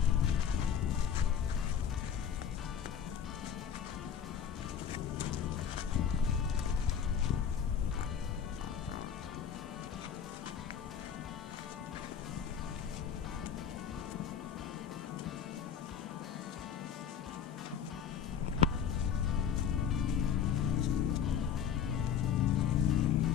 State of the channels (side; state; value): right; quieter; 8.2 dB